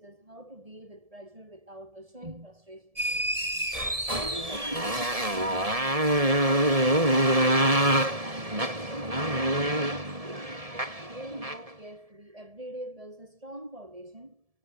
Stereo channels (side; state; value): left; late; 1.7 ms